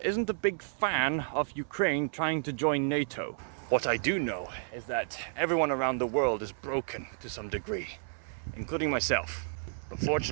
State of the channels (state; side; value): silent; left; 57 dB below the other